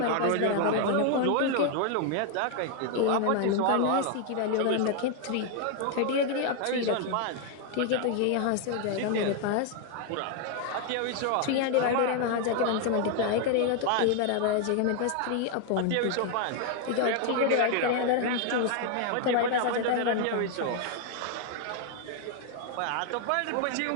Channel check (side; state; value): both; different; correlation 0.00